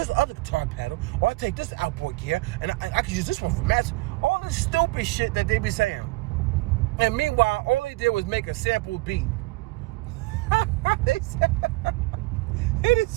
guitar pedal, or I take this outboard gear and I can use this one for match. All this stupid shit that they be saying. And meanwhile, all they did was make a sample beat. They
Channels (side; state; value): left; quieter; 22.3 dB